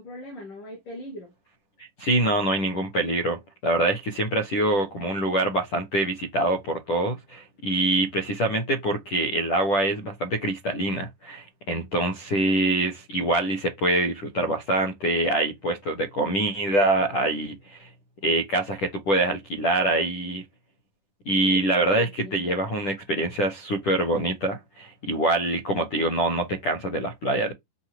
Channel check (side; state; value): right; late; 10 ms